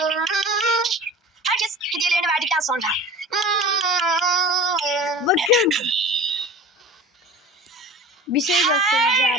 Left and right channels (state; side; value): normal; both; correlation 0.37